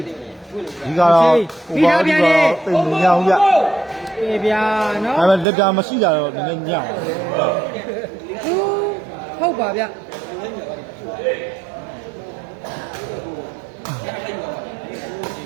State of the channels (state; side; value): drops out; left; at 5.5 s